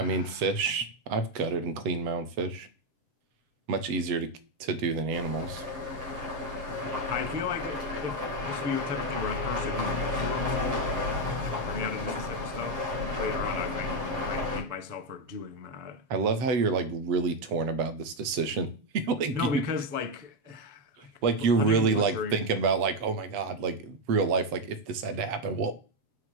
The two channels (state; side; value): late; left; 7.4 ms